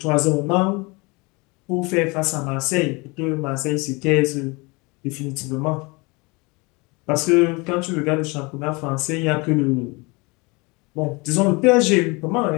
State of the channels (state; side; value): quieter; right; 26.9 dB